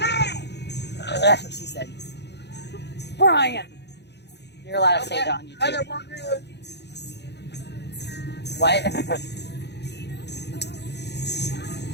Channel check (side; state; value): right; late; 0.49 ms